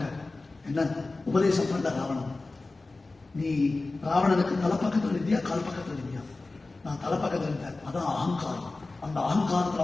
என்ன உபதேசம் பண்ண ராவணன்? நீ ராவணனுக்கு தலைப்பக்கத்தில் இருந்தியா கால் பக்கத்தில் இருந்தியா? நான் தலைப்பக்கத்தில் இருந்தேன். அதான் அகங்காரம். அந்த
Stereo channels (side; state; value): right; quieter; 3.3 dB